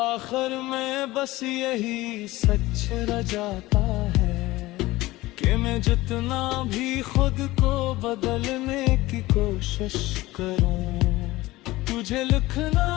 में बस यही सच रह जाता है कि मैं जितना भी खुद को बदलने की कोशिश करूं, तुझे लिखना,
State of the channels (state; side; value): quieter; right; 18.6 dB